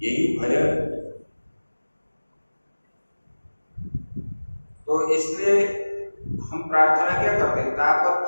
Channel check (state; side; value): inverted; both; correlation -1.00